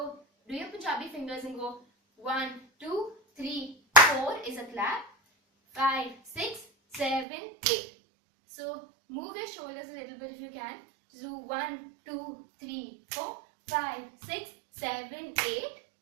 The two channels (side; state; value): left; drops out; at 7.2 s